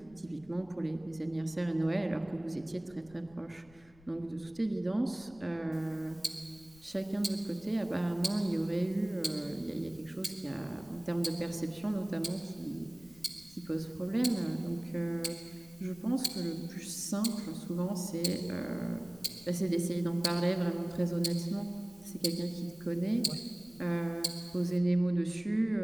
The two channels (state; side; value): noise; left; rumble, 25 dB below the sound